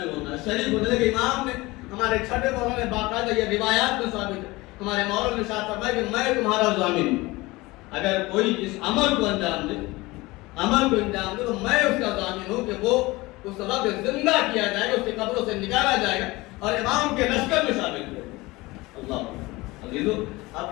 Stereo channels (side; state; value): right; quieter; 21.4 dB